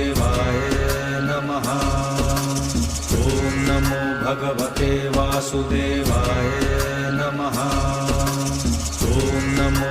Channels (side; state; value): both; identical; correlation 1.00